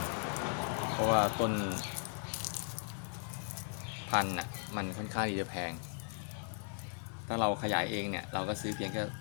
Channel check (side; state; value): right; silent; 53 dB below the other